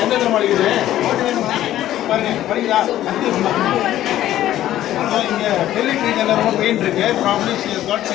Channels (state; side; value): quieter; right; 13.2 dB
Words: இங்கே டெல்லிக் ரீஜனில் ரொம்ப பெயின் இருக்குது. ப்ராப்ளி ஷி ஹஸ் காட்